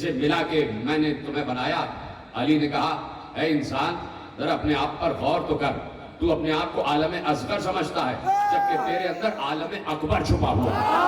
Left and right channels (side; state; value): both; identical; correlation 1.00